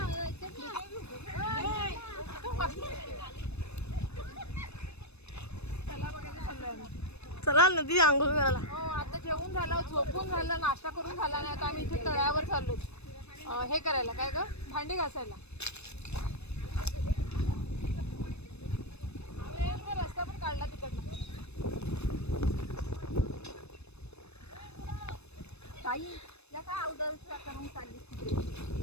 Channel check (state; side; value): late; right; 0.80 ms